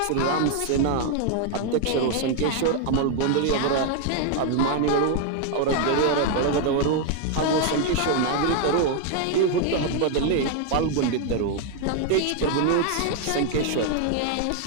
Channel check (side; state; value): both; different; correlation 0.00